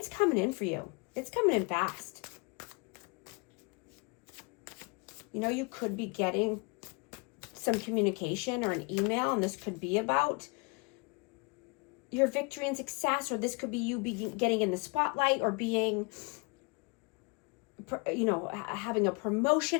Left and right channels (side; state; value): right; quieter; 31.5 dB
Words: coming in for you. It's coming in fast. You could be getting some communication or an email, and this could be about your victory and success, or this could be you getting in the spotlight, or being, having a